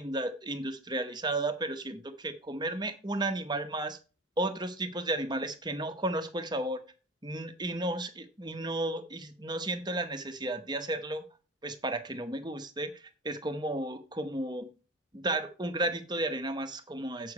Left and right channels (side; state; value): both; normal; correlation 0.33